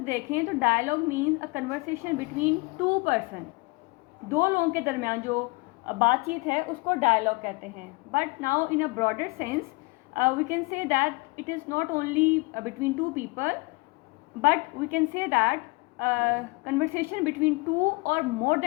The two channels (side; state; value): right; quieter; 26.5 dB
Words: देखें तो dialogue means a conversation between two person, दो लोगों के दरमियान जो बातचीत है उसको डायलॉग कहते हैं। But now in a broader sense we can say that it is not only between two people, but we can say that conversation between two or more